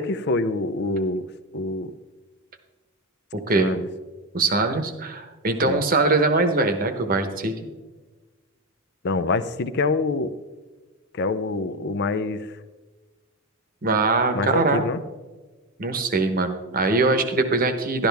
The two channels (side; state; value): both; normal; correlation 0.12